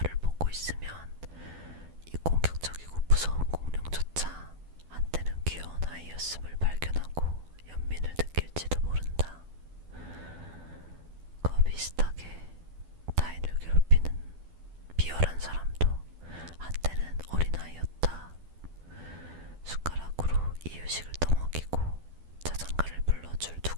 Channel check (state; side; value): late; left; 12 ms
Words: 보고 있으면 이 공격적이고 무서운 공룡조차 한때는 귀여운 아이였음을 발견하고 연민을 느낄지도 모른다. 그와 비슷하게 타인을 괴롭히는 비열한 사람도 한때는 어린아이였다. 숟가락으로 이유식을 떠먹이고 자장가를 불러줄